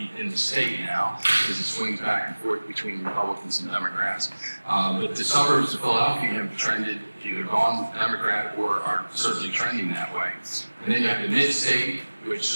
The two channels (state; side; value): inverted; both; correlation -1.00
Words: in the state now, because it swings back and forth between Republicans and Democrats. But the suburbs of Philadelphia have trended, either gone Democrat or are certainly trending that way. And then you have the mid-state,